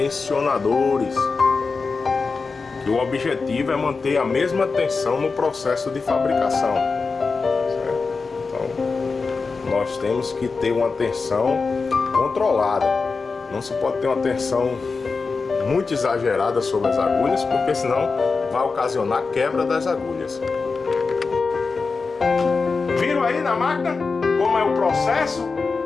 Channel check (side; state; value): right; quieter; 4.4 dB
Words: que o objetivo é manter a mesma tensão no processo de fabricação, certo? Então, nós temos que ter uma tensão controlada. Não se pode ter uma tensão muito exagerada sobre as agulhas, porque senão vai ocasionar quebra das agulhas. Viram aí na máquina como é o processo